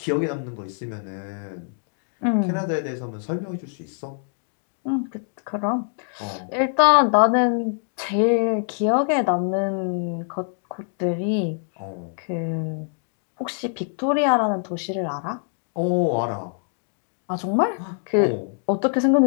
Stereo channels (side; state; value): right; silent; 59 dB below the other